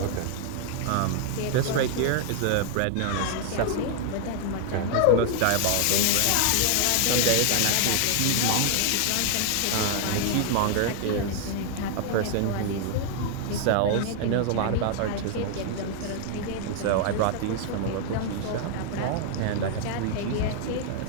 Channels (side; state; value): both; different; correlation 0.00